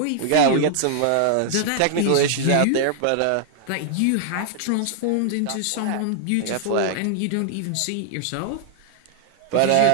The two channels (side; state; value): both; different; correlation 0.00